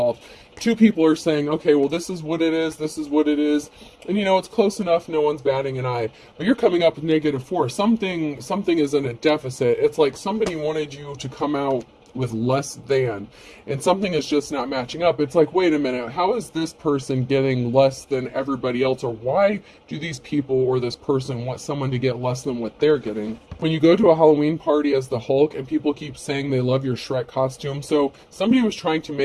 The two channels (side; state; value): both; identical; correlation 1.00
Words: 2 people are saying, okay, well, this is what it is, this is what it is, and it's close enough, no one's batting an eye. But you're coming up with -4. Something is in a deficit. It's like somebody wanted you to come out with less than, and something is just not matching up. It's like, wait a minute, how is this person getting less than everybody else, or why do these people or this person want someone to get less than what they're getting? When you go to a Halloween party as the Hulk and people keep saying they love your Shrek costume, so somebody was trying to